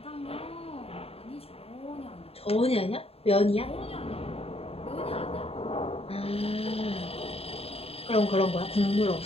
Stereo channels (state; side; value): late; right; 0.28 ms